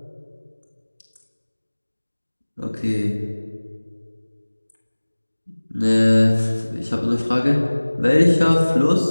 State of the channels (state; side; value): inverted; both; correlation -1.00